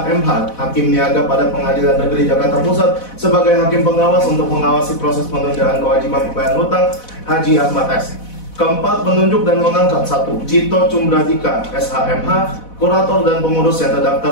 Hakim Niaga pada Pengadilan Negeri Jakarta Pusat sebagai hakim pengawas untuk mengawasi proses penundaan kewajiban pembayaran utang Haji Ahmad S. Keempat, menunjuk dan mengangkat 1. Jito Cumradika SHMH, kurator dan pengurus yang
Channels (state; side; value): late; right; 4.1 ms